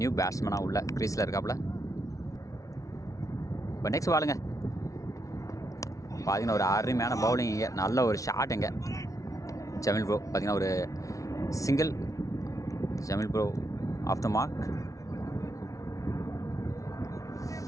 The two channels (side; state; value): right; late; 0.16 ms